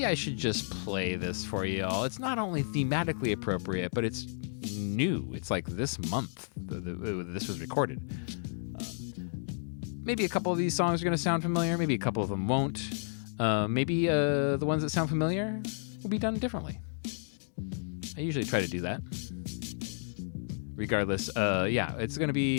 I should just play this for you all. It's not only thematically appropriate, but it's new. It's like this month this was recorded. Maybe a couple of these songs are going to sound familiar. Maybe a couple of them won't. Maybe the ones that sound familiar will be done differently. I usually try to do that. Regardless, it's going to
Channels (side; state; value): right; silent; digital silence